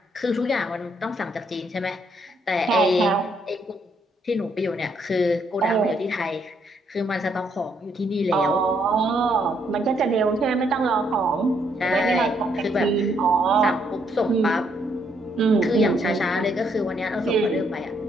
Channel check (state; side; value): normal; both; correlation 0.72